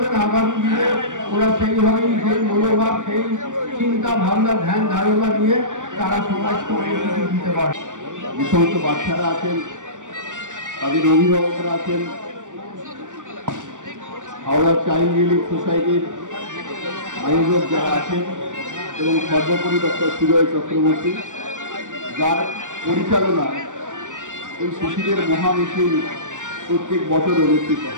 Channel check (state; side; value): late; left; 0.87 ms